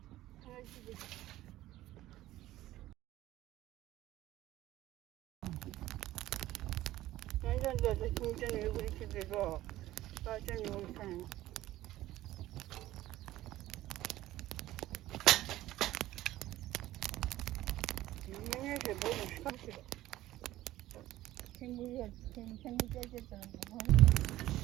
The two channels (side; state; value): left; quieter; 15.4 dB